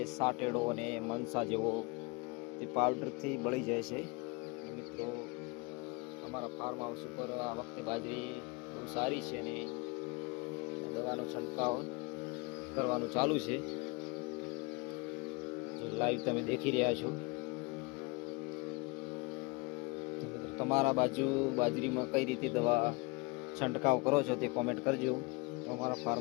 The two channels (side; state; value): right; quieter; 27.6 dB